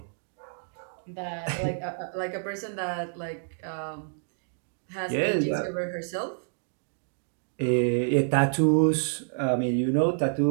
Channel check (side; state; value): left; silent; digital silence